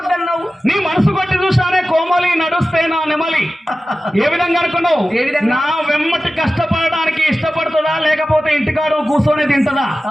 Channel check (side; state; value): both; normal; correlation 0.95